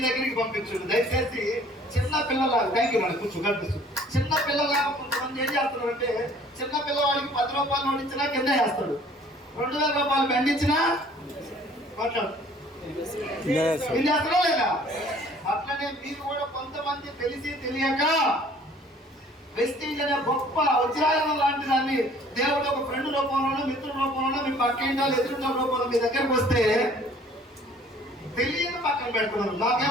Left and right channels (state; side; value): normal; both; correlation 0.54